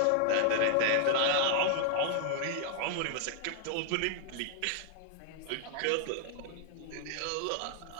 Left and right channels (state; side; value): different; both; correlation 0.00